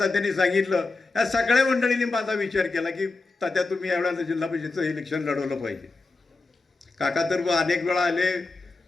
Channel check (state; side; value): quieter; right; 3.6 dB